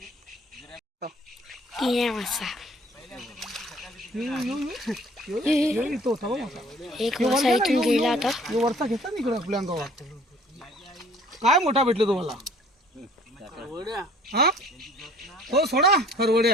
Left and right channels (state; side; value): normal; both; correlation 0.53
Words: एक मासा इथून गेला आता. वरचा घेतला ना इकडे आपल्या अंगावर. काय मोठा भेटलो तुम्हाला? हा हो सोडा